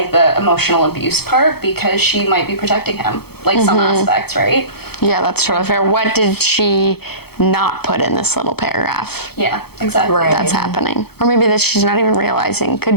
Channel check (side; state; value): right; late; 0.96 ms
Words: the emotional abuse part, because she might be protecting him, like some aspects, right? Yeah, that's totally fair. What did she not put in this little paragraph Yeah, exactly. Right. that's happening? Or maybe that she's not even realizing